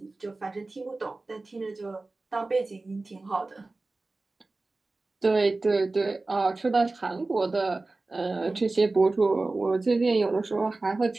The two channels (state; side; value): quieter; left; 3.3 dB